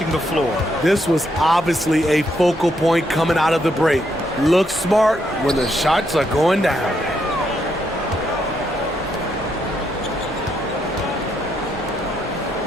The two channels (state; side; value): normal; both; correlation 0.77